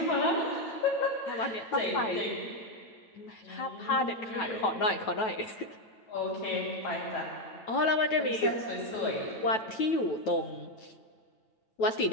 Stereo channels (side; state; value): right; late; 9.2 ms